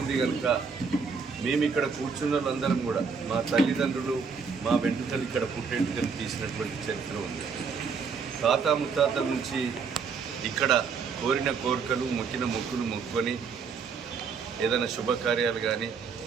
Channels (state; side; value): quieter; left; 5.6 dB